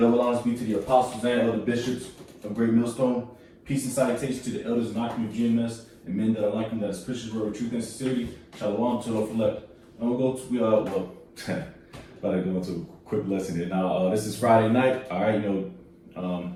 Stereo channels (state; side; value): identical; both; correlation 1.00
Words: honors be to the apostles and other bishops of Great Millstone. Peace and salutation to the elders and occupants of GMS and men that are like them, that is Christians, word of truth and sincerity. Shalom to the elect. And we'll go to, about to go into a quick lesson here. Now, this is Friday night. All right,